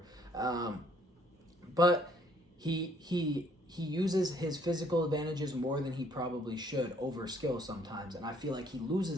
But he uses his physical advantages more than he probably should over skill sometimes. And I feel like he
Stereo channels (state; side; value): normal; both; correlation 0.64